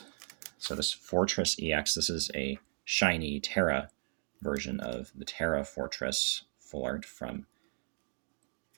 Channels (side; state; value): left; silent; 54 dB below the other